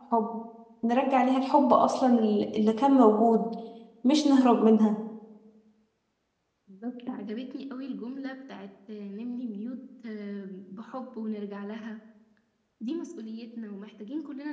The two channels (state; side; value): identical; both; correlation 1.00